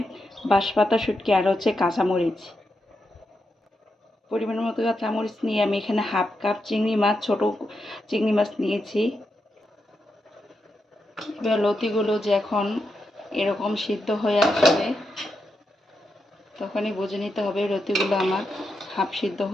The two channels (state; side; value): normal; both; correlation 0.85